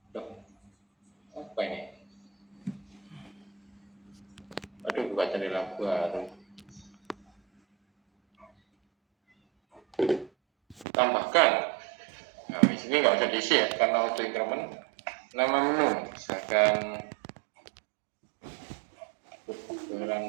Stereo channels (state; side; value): drops out; left; at 10.9 s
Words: Loh, apa ini? Aduh, buka cari lagu baru. Tambahkan. Nah, di sini nggak usah diisi ya, karena auto increment. Nama menu, misalkan